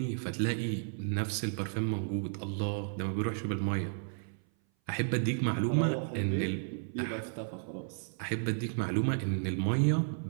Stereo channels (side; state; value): left; silent; 56 dB below the other